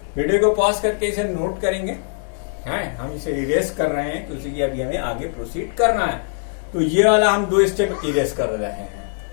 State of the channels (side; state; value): right; silent; 65 dB below the other